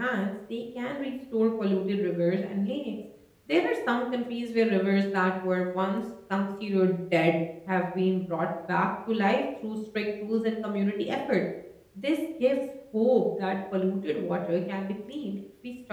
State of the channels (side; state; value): both; identical; correlation 1.00